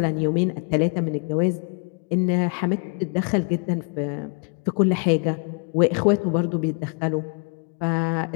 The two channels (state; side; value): quieter; right; 39.1 dB